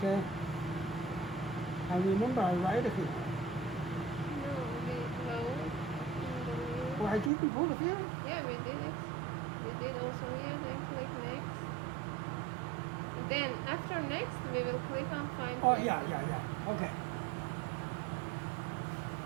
I remember I write here. No. Oh, I didn't put here? Yeah, we did it. We did also here, then click next. Then after next, we will click on find. Oh, place. yeah. Okay.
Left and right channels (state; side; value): drops out; left; at 7.3 s